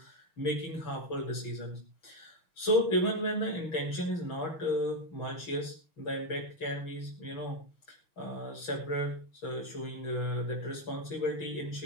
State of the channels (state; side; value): late; right; 6.1 ms